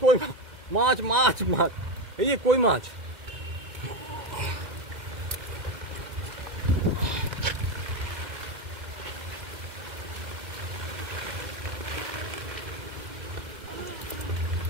কই মাছ, মাছ মাছ, এই যে কই মাছ।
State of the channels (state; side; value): late; left; 2.1 ms